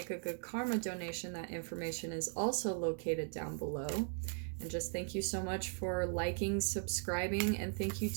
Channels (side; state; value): left; silent; 52 dB below the other